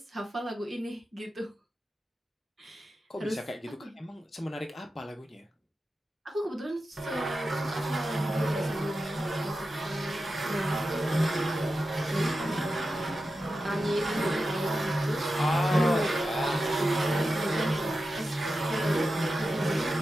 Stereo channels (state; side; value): normal; both; correlation 0.91